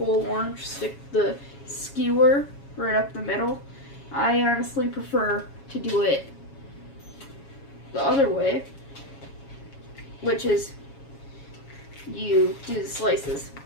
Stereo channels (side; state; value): right; late; 7.2 ms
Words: orange, stick the skewer right up the middle. I honestly prefer to do it the other way, which is you do the slices.